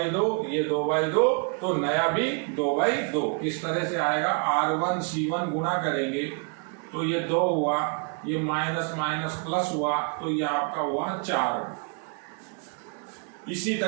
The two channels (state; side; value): quieter; left; 38.3 dB